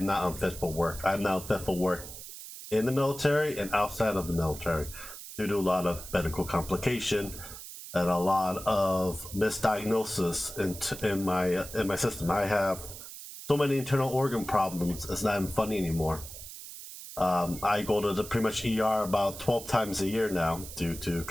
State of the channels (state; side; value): noise; right; hiss, 12 dB below the sound